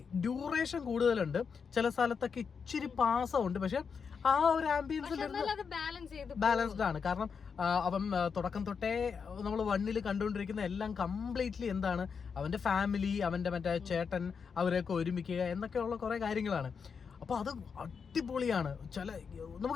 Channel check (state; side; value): quieter; right; 6.0 dB